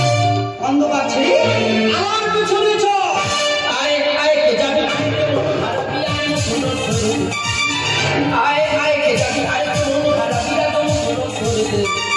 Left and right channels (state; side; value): identical; both; correlation 1.00